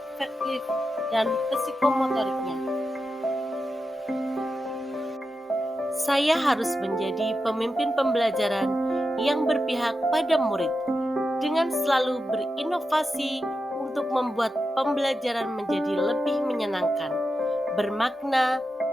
dan psikomotoriknya. Saya harus menjadi pemimpin pembelajaran yang berpihak pada murid dengan selalu berinovasi untuk membuat pembelajaran menjadi lebih menyenangkan, bermakna,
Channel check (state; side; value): normal; both; correlation 0.89